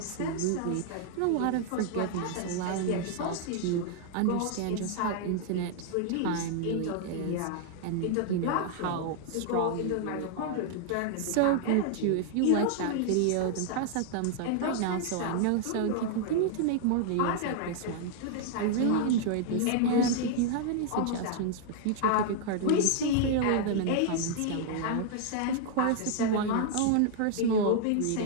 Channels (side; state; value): both; different; correlation 0.00